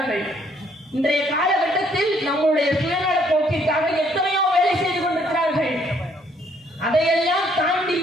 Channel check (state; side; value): normal; both; correlation 0.66